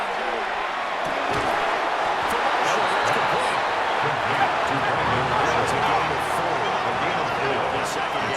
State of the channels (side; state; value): both; identical; correlation 1.00